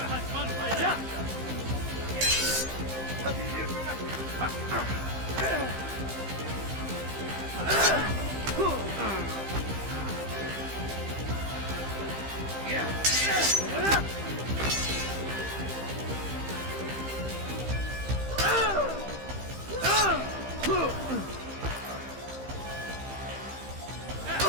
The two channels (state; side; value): late; left; 15 ms